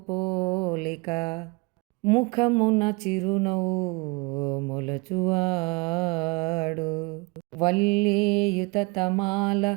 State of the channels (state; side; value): quieter; left; 27.5 dB